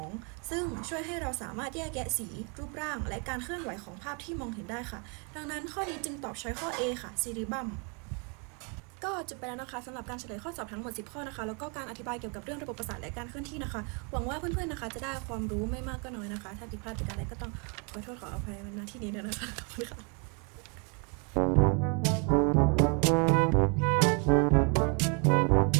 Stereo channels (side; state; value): left; quieter; 35.4 dB